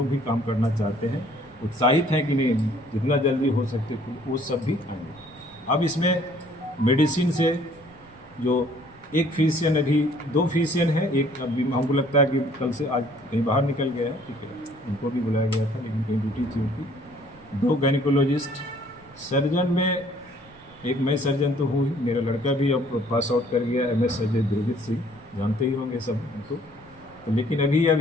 भी काम करना चाहते हैं, उत्साहित हैं कि नहीं जितना जल्दी हो सकते वो सब भी आएंगे। अब इसमें मेडिसिन से जो एक फिजिशियन, अभी 2 फिजिशियन है, एक अभी हमको लगता है कि कल से आज कहीं बाहर निकल गया है, ठीक है, उनको भी बुलाया गया था लेकिन कहीं ड्यूटी थी उनकी। 2 गायनिकोलॉजिस्ट, सर्जन में एक मैं सर्जन तो हूँ ही, मेरा लड़का भी अब पास आउट कर गया MS सर्जन दुर्गित सिंह, जानते ही होंगे सब उनको। तो लेकिन अभी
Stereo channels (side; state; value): right; noise; rumble, 26 dB below the sound